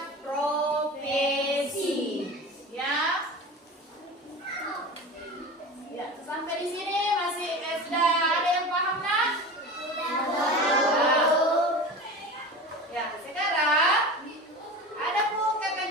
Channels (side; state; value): both; normal; correlation 0.32